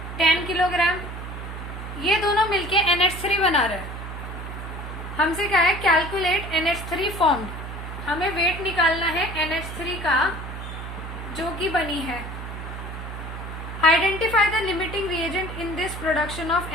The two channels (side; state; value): right; noise; hum, 8 dB below the sound